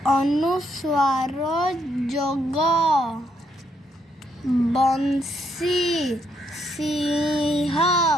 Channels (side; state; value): both; normal; correlation 0.74